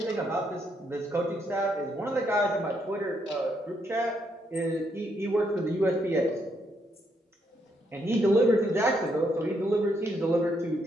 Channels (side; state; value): both; normal; correlation 0.76